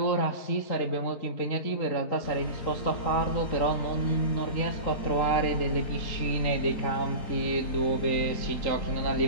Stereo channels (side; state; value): right; late; 3.9 ms